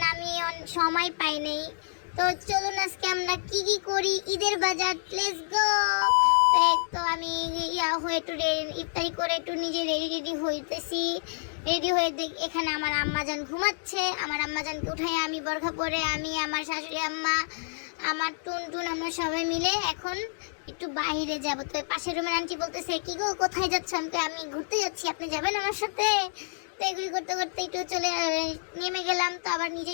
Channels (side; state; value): right; silent; digital silence